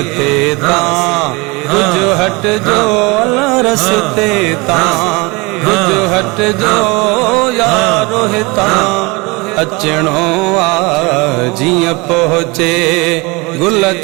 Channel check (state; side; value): quieter; left; 26.0 dB